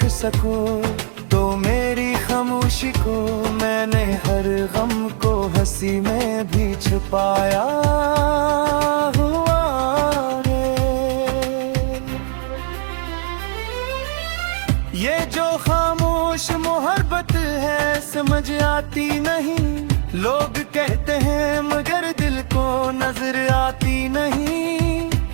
सको तो मेरी खामोशी को, मैंने हर गम को हंसी में भी छुपाया हुआ है। ये जो खामोश मोहब्बत है समझ आती नहीं, लोग कहते हैं मगर दिल को नजर आती नहीं।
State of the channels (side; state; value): left; silent; 60 dB below the other